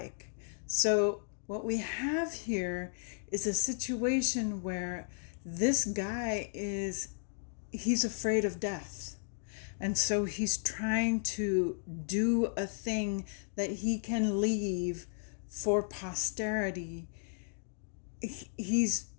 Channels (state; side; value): silent; right; digital silence